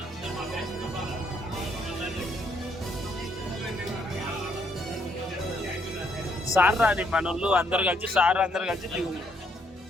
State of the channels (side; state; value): both; normal; correlation 0.71